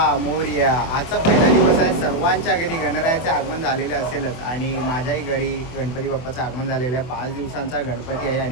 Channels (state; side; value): late; right; 24 ms